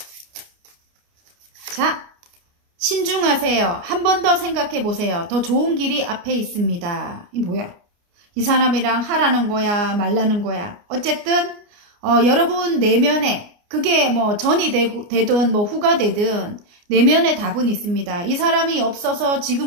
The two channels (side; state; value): left; late; 29 ms